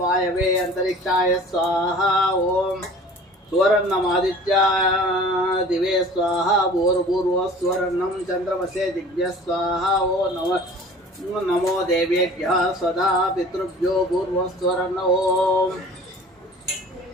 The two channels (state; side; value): normal; both; correlation 0.45